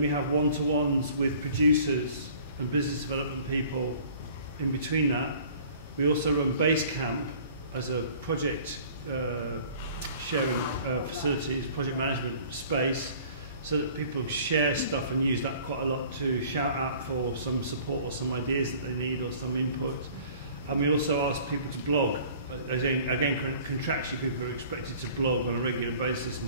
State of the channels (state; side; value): inverted; both; correlation -0.50